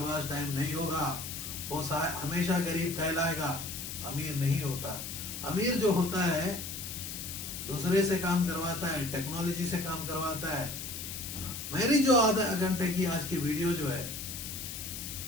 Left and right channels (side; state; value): left; noise; hiss, 7 dB below the sound